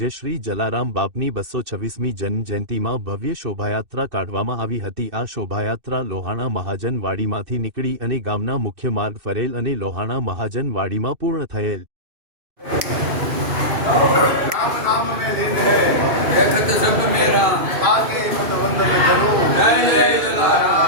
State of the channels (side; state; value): left; late; 2.6 ms